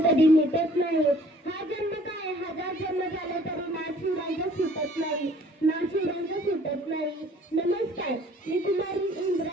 मिटत नाही। हा जन्म काय हजार जन्म झाले तरी नाशिवरांचा सुटत नाही, नाशिवरांचा सुटत नाही। नमस्कार, मी कुमारी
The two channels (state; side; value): normal; both; correlation 0.55